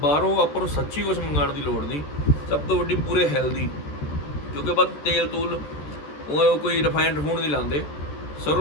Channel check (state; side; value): late; right; 14 ms